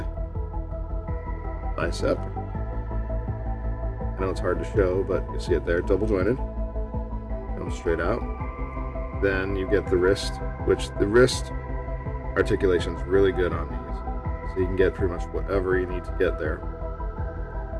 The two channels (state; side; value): identical; both; correlation 1.00